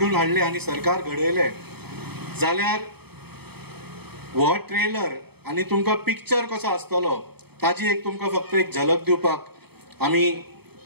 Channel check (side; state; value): left; late; 0.97 ms